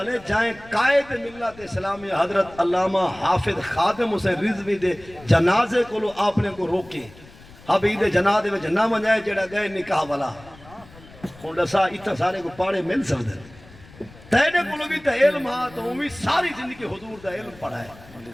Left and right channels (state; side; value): noise; left; rumble, 22 dB below the sound